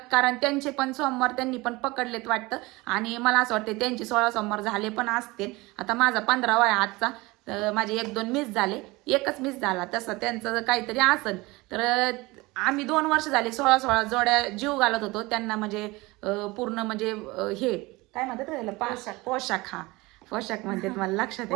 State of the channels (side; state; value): left; quieter; 22.4 dB